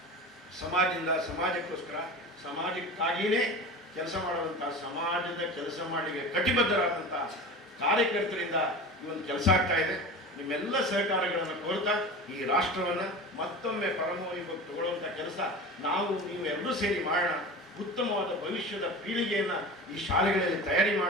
ಸಮಾಜದಿಂದ ಸಮಾಜಕ್ಕೋಸ್ಕರ, ಸಮಾಜಕ್ಕಾಗಿಯೇ ಕೆಲಸ ಮಾಡುವಂಥ, ಸಮಾಜದ ಕೆಲಸ ಮಾಡಲಿಕ್ಕೆ ಕಟಿಬದ್ಧರಾದಂಥ ಕಾರ್ಯಕರ್ತರಿಂದ ಈ ಒಂದು ಕೆಲಸ ಆಗ್ತಾ ಇದೆ. ನಿಮ್ಮೆಲ್ಲ ಸಹಕಾರಗಳನ್ನು ಕೋರ್ತಾ ಈ ರಾಷ್ಟ್ರವನ್ನು ಮತ್ತೊಮ್ಮೆ ಪರಮವೈಭವಕ್ಕೆ ತಗೊಳ್ಳುವಂಥ ಕೆಲಸ ನೀವು ಎಲ್ಲರೂ ಸೇರಿ ಮಾಡೋಣ. ಉತ್ತಮವಾದ ಭವಿಷ್ಯದ ಪೀಳಿಗೆಯನ್ನು ಈ ಶಾಲೆಗಳಲ್ಲಿ ತಯಾರಿ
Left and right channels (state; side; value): normal; both; correlation 0.32